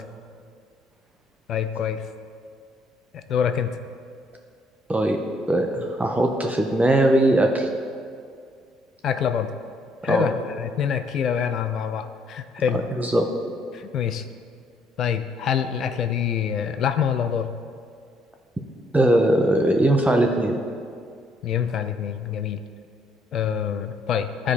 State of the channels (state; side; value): normal; both; correlation 0.68